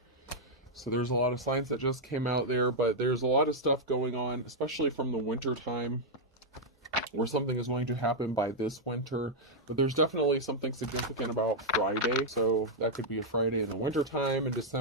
So there's a lot of signs that just came out there, but there's a lot of stuff going on, especially from the winter time, where something is going to happen by this winter. But there's definitely something significant about Friday. So that could be a Friday in the winter time. In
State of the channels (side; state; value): both; normal; correlation -0.03